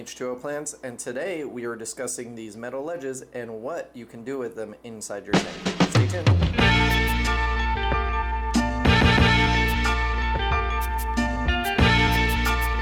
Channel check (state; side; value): identical; both; correlation 1.00